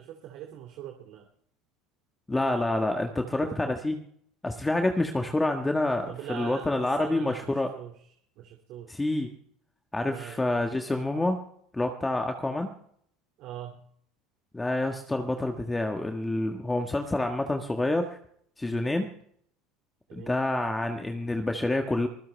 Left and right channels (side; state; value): both; normal; correlation 0.92